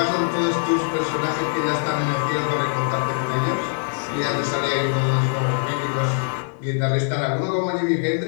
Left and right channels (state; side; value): silent; right; 64 dB below the other